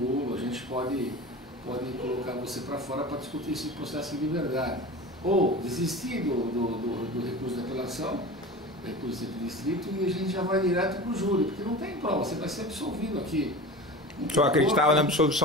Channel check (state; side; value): normal; both; correlation 0.33